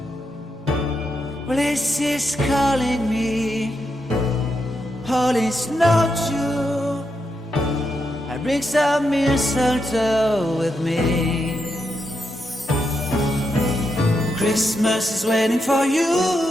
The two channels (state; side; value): normal; both; correlation 0.83